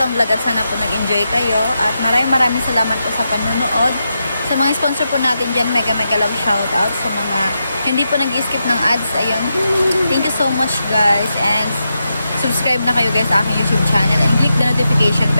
vlog at sana po nag-enjoy kayo. At maraming salamat po sa panunood. Sa mga sponsor po natin dyan, mega love shoutout. Sa mga hindi po nag-skip ng ads, ayun. Thank you so much guys. And subscribe na kayo guys sa aking YouTube channel. And click the notification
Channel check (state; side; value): inverted; both; correlation -0.86